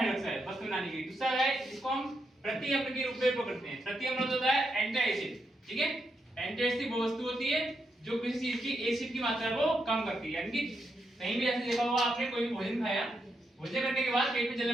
वस्तु बनाने के लिए। दूसरा है इसको हम प्रति अम्ल के रूप में उपयोग करते हैं। प्रति अम्ल होता है एंटी एसिड, ठीक है। एंटी एसिड वो वस्तु होती है जो किसी चीज की एसिड की मात्रा को कम करती है। यानी कि कहीं भी ऐसे देखा होगा आपने, कोई भी भोजन खाया, भोजन करने के बाद पेट में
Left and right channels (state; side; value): normal; both; correlation 0.82